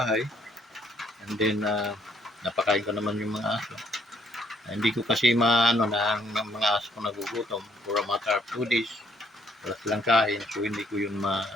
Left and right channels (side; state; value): both; normal; correlation 0.67